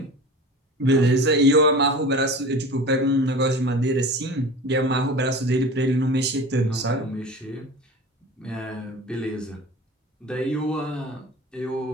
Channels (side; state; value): both; normal; correlation 0.35